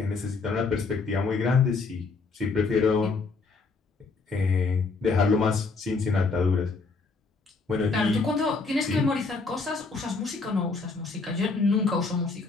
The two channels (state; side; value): quieter; right; 4.2 dB